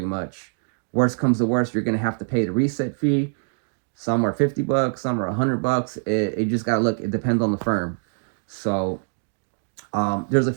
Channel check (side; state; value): left; silent; 63 dB below the other